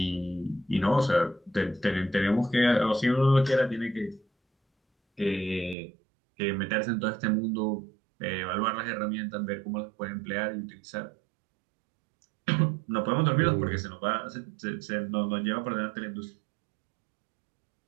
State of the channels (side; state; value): left; drops out; at 5.8 s